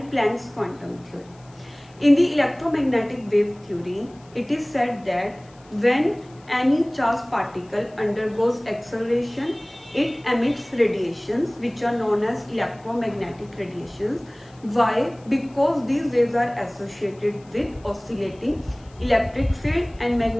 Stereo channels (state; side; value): noise; left; hiss, 29 dB below the sound